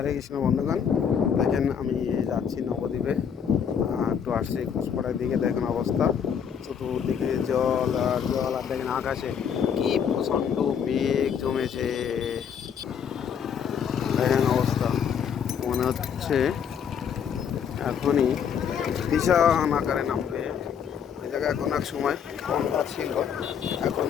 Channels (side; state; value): right; quieter; 7.7 dB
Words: কৃষ্ণ বন্ধুগণ, দেখেন আমি যাচ্ছি নবদ্বীপে। একটু আসছি ঘোষপাড়ার দিকে। দেখেন অবস্থা, চতুর্দিকে জল আর জল। আর দেখেন আকাশে কি প্রচণ্ড মেঘ জমেছে। দেখেন অবস্থা, মনে হচ্ছে এখনই বিশাল আকারে নামবে। ওই জায়গায় এখন এক সময় গঙ্গা ছিল, এখন